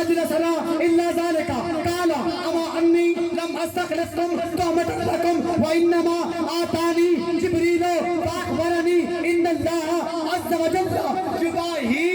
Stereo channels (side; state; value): both; identical; correlation 1.00